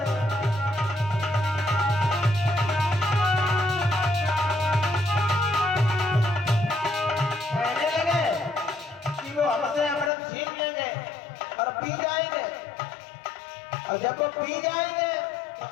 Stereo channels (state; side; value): drops out; right; at 10.1 s